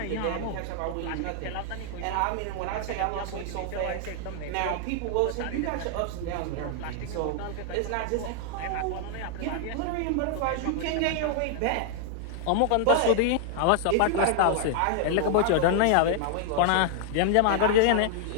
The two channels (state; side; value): different; both; correlation -0.01